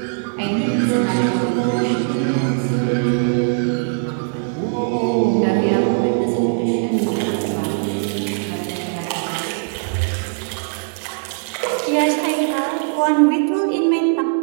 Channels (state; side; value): silent; left; digital silence